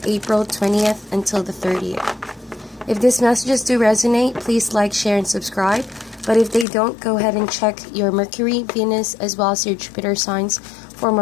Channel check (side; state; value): right; drops out; at 6.7 s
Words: April 20th until the 30th. If these messages do resonate, please like, share, and subscribe. But if they don't, go ahead and check your Mercury, Venus, as well as your Jupiter signs for